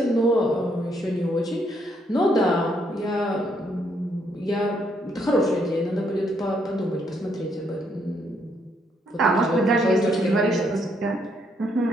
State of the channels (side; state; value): both; normal; correlation 0.72